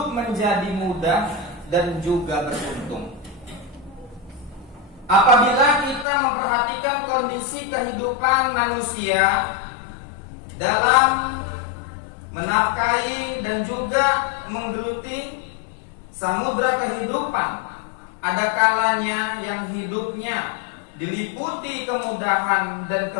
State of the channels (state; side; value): drops out; right; at 6.1 s